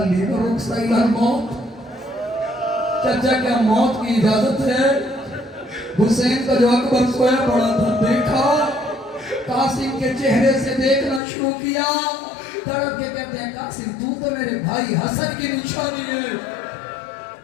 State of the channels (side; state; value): right; drops out; at 11.2 s